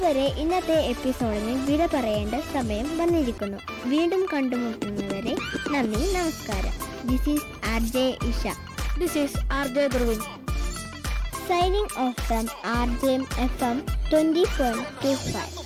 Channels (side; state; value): both; identical; correlation 1.00